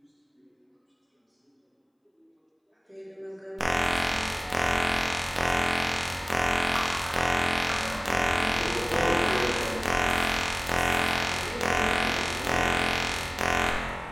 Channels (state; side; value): identical; both; correlation 1.00